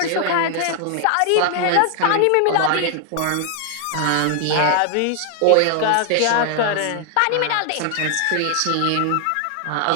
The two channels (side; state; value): both; different; correlation 0.00